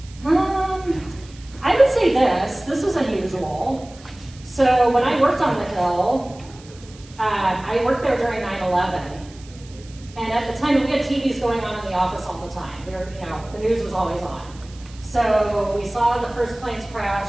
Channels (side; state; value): right; noise; hiss, 23 dB below the sound